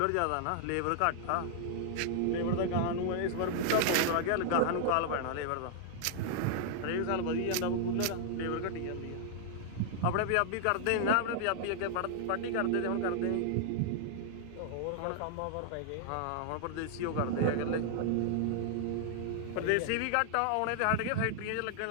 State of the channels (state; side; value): different; both; correlation -0.01